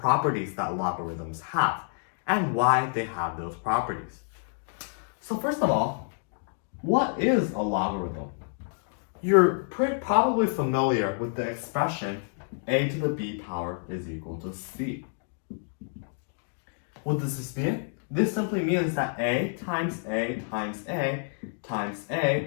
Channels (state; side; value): silent; right; 59 dB below the other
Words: that logarithms have, and why they have those properties. So first of all, what is a logarithm? You're probably familiar with the expression a to the b power is equal to c. What does this mean? This simply means that a times a times a times